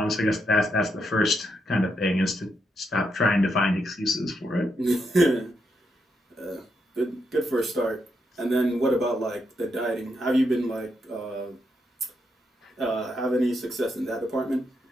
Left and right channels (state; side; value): normal; both; correlation 0.81